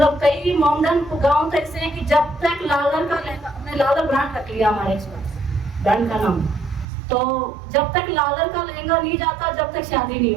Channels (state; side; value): drops out; left; at 6.9 s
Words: कई मॉडर्न गाँव तो ऐसे हैं कि जब तक लालर का लेगा, हमने लालर ब्रांड रख लिया हमारे ब्रांड का नाम, तो जब तक लालर का लहंगा नहीं जाता जब तक शादी नहीं